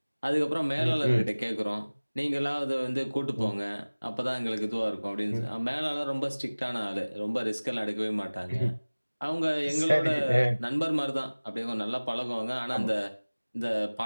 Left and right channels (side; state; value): both; inverted; correlation -1.00